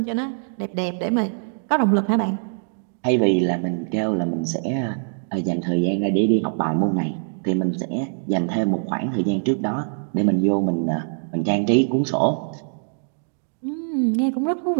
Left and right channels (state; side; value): silent; left; digital silence